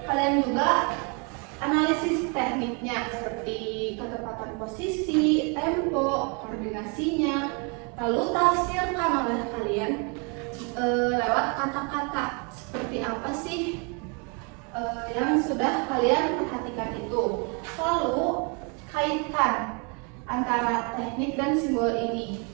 kalian juga analisis tekniknya seperti ketepatan posisi, tempo, koordinasinya. Lalu tafsirkan oleh kalian lewat kata-kata. Seperti apa sih yang sudah kalian perhatikan itu. Lalu kaitkan antara teknik dan simbol ini.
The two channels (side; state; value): left; quieter; 34.2 dB